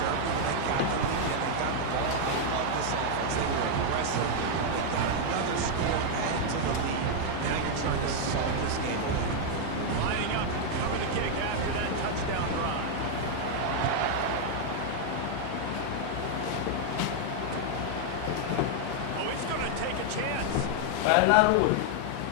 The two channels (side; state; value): both; different; correlation 0.00